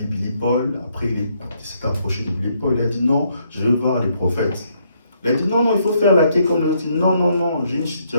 Billy Paul. Après, il s'est approché de Billy Paul. Il a dit non, je veux voir les prophètes. Il a dit non, il faut faire la quai comme il a dit non, j'ai une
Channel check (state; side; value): inverted; both; correlation -0.72